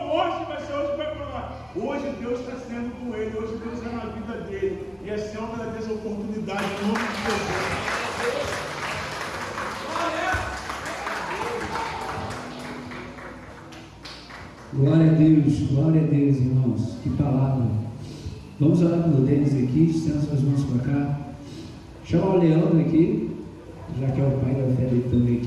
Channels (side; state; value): both; identical; correlation 1.00